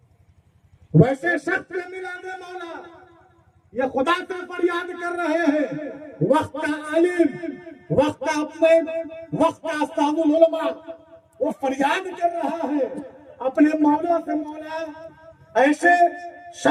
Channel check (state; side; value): identical; both; correlation 1.00